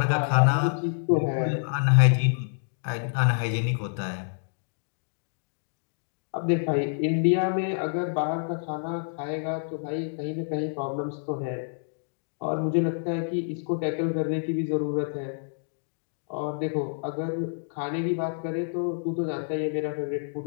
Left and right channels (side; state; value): right; silent; digital silence